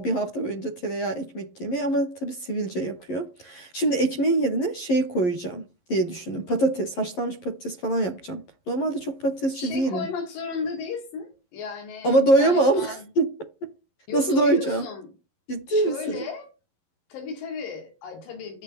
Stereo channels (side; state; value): right; late; 11 ms